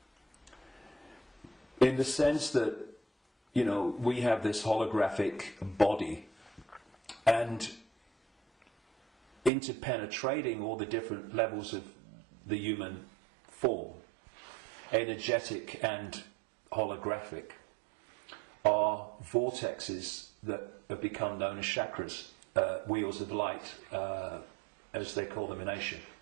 in the sense that, you know, we have this holographic body, and interpenetrating all the different levels of the human form, energetic and holographic, are vortexes that have become known as chakras, wheels of light, as they call them in Asia.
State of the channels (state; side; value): drops out; left; at 9.5 s